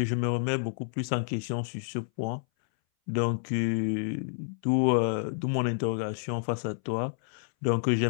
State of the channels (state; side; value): silent; right; 58 dB below the other